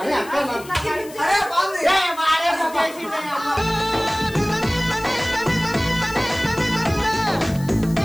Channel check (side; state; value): left; noise; hiss, 19 dB below the sound